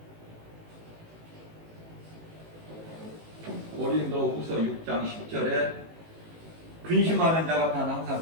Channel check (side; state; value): left; late; 18 ms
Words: 고린도후서 6장 10절에 근심하는 자 같아는 항상